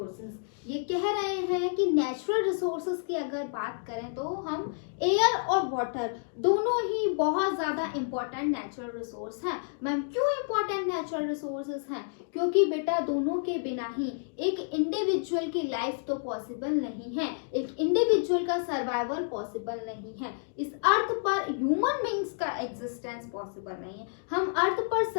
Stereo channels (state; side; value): silent; right; digital silence